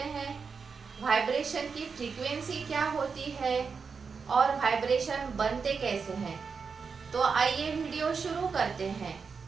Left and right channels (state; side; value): quieter; left; 5.4 dB